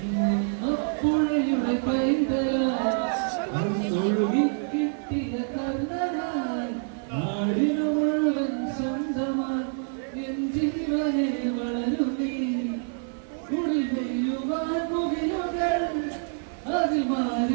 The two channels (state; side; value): silent; left; 60 dB below the other